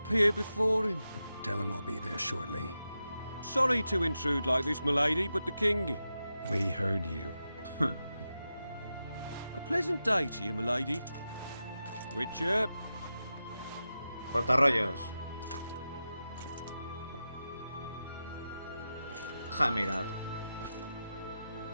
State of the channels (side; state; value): both; inverted; correlation -0.90